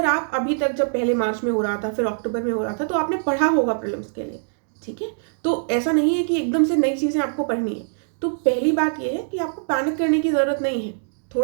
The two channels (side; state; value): left; silent; digital silence